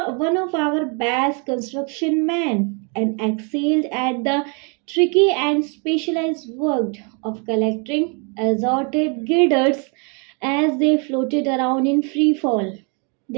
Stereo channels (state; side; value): quieter; left; 35.7 dB